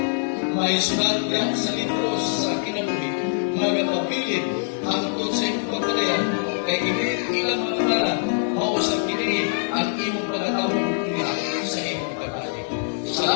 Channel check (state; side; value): silent; right; 61 dB below the other